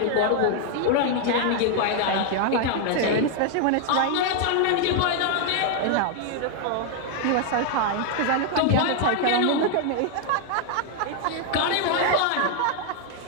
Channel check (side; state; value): both; different; correlation 0.00